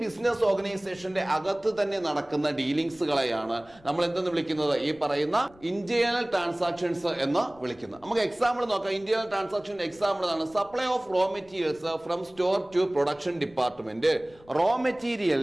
ബിസിനസ് ഓർഗനൈസേഷന്റെ അകത്ത് തന്നെ നടക്കുന്ന ഡീലിങ്സുകളെയാണ് നമ്മൾ എന്തെന്ന് വിളിക്കുന്നത്? ഈ പറയുന്ന ഇന്റേണൽ ട്രാൻസാക്ഷൻസ് എന്ന് വിളിക്കുന്നത്. നമുക്ക് എക്സാമ്പിൾ നോക്കാം. ഇന്റേണൽ ട്രാൻസാക്ഷൻ എക്സാമ്പിൾ ആണ് supply of raw materials from store to production department. Raw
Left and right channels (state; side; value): noise; left; rumble, 26 dB below the sound